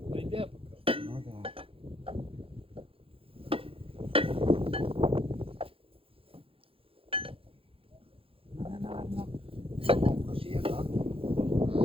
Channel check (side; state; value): left; late; 0.27 ms